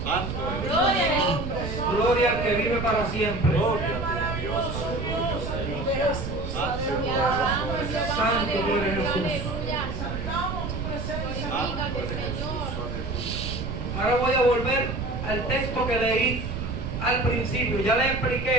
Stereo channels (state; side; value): noise; right; rumble, 5 dB below the sound